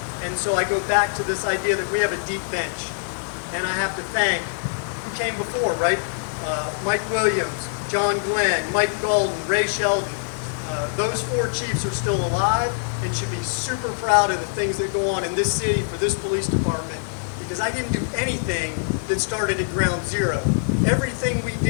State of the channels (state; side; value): silent; right; digital silence